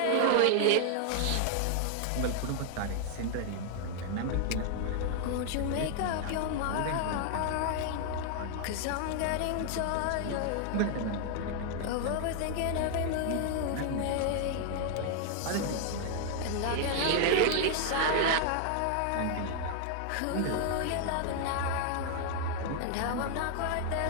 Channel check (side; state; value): both; different; correlation 0.00